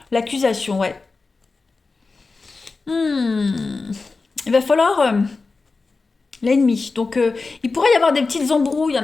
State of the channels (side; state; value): right; quieter; 4.0 dB